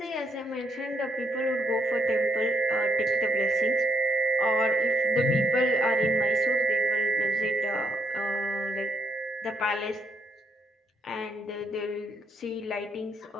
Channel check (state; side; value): normal; both; correlation 0.75